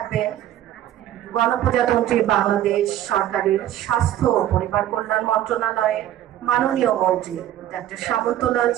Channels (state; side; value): quieter; left; 12.3 dB